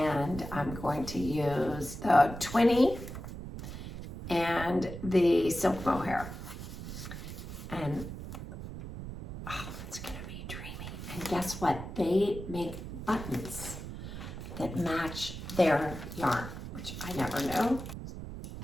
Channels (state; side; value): noise; right; rumble, 9 dB below the sound